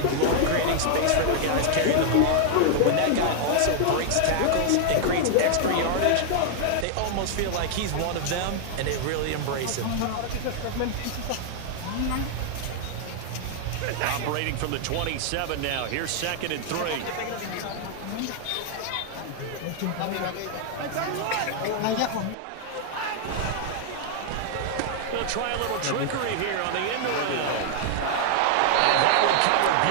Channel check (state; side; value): different; both; correlation 0.00